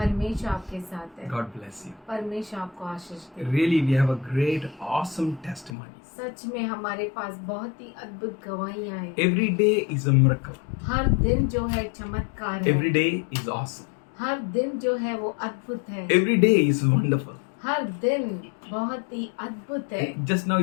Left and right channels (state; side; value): drops out; right; at 5.8 s